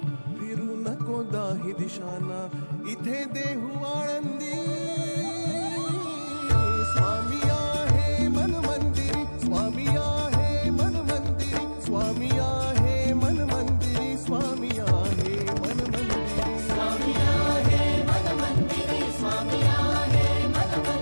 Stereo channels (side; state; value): both; inverted; correlation -1.00